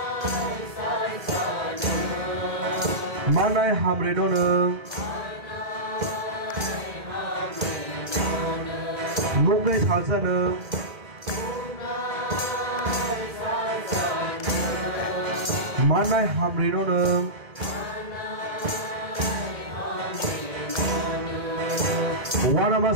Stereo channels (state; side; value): late; left; 1.9 ms